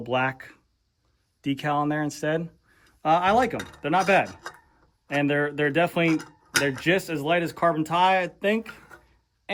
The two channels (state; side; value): identical; both; correlation 1.00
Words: black decal on there instead. I like them. They're not bad. And they're just as light as carbon tire, I think.